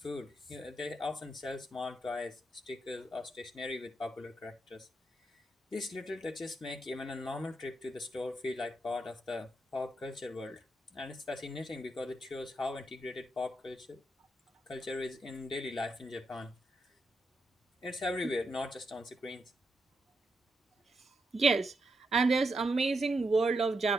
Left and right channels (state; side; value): normal; both; correlation 0.83